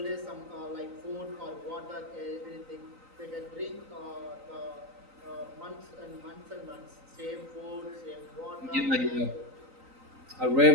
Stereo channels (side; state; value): left; late; 3.9 ms